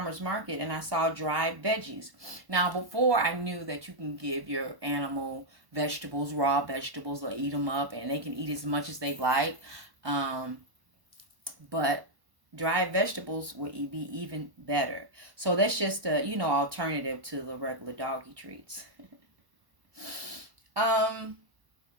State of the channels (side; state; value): left; late; 1.1 ms